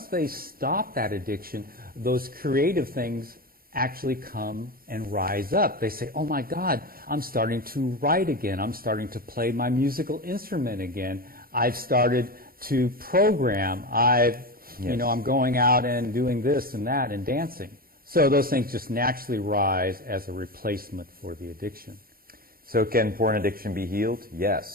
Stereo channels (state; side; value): late; left; 0.43 ms